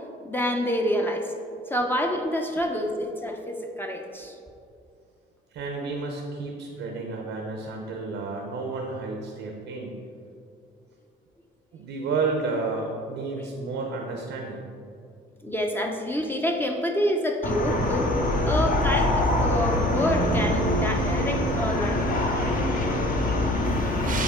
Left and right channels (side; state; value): both; normal; correlation 0.49